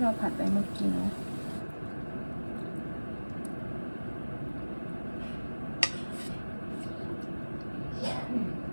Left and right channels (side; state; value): both; inverted; correlation -1.00